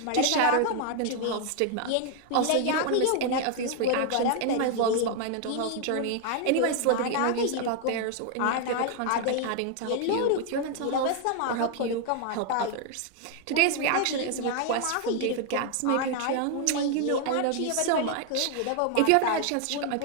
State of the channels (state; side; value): different; both; correlation 0.00